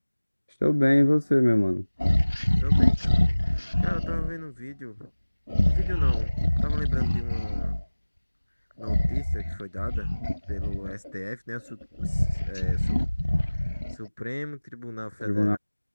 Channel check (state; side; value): inverted; both; correlation -1.00